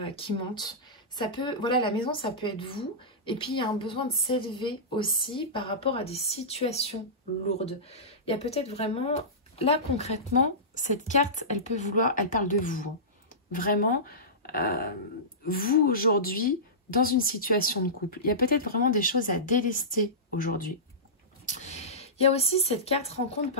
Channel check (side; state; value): both; normal; correlation -0.18